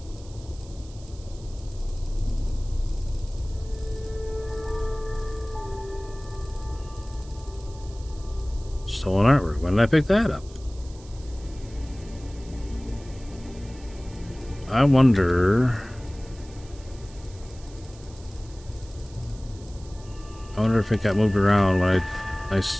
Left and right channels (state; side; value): noise; right; hiss, 23 dB below the sound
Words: Stolen artwork. When did I pick that up? I wonder if it got moved around when I